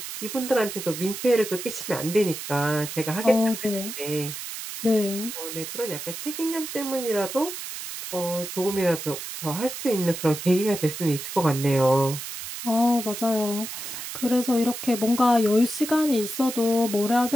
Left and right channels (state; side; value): noise; right; hiss, 8 dB below the sound